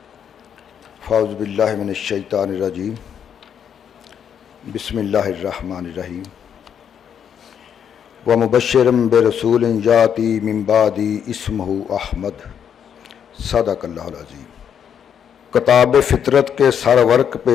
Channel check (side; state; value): right; quieter; 8.3 dB